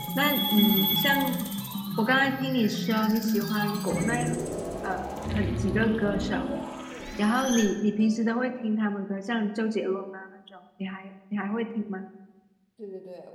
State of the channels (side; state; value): both; identical; correlation 1.00